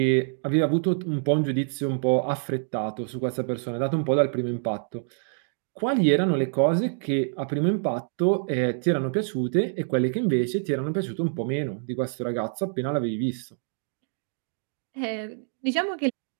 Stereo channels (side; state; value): left; silent; 61 dB below the other